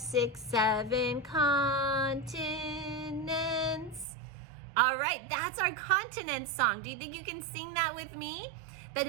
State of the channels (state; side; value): drops out; left; at 4.0 s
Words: 7 continents. All right, that's our continent song. Do you think you can sing that with me? But